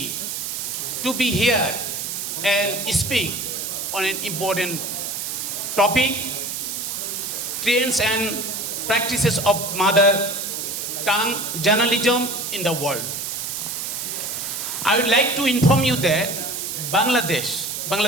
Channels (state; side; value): noise; right; hiss, 4 dB below the sound